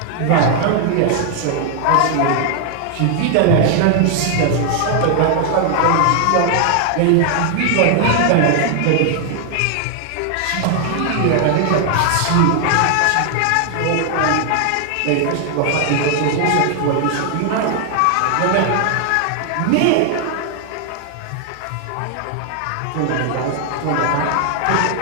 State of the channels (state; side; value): different; both; correlation 0.00